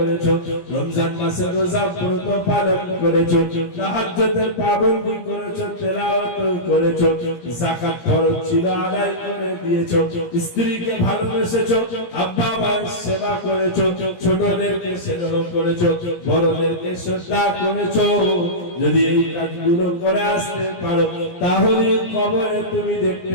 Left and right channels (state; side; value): late; right; 17 ms